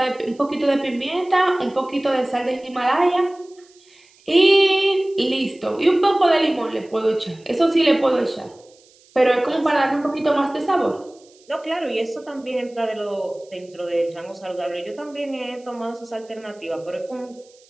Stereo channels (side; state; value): right; noise; hiss, 29 dB below the sound